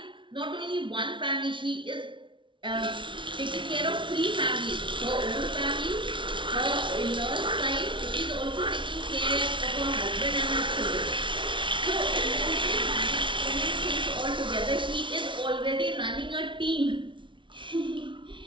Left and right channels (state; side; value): late; left; 0.24 ms